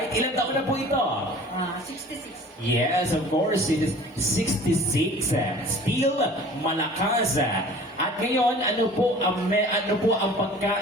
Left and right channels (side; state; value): both; normal; correlation 0.45